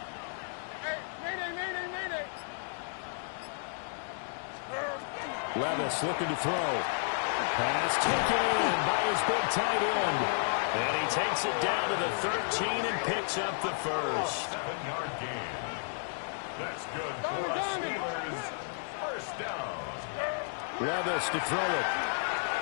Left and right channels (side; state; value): right; silent; digital silence